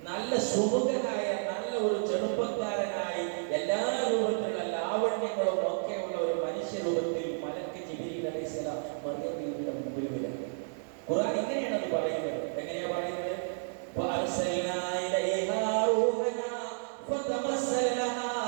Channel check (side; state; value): left; silent; digital silence